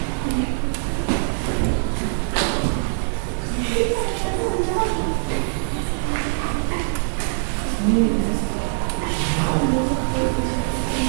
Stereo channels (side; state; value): left; silent; 64 dB below the other